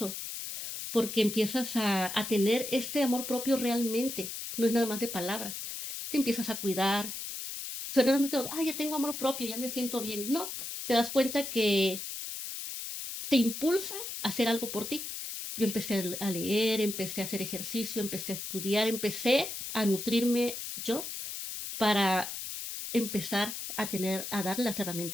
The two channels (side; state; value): left; noise; hiss, 7 dB below the sound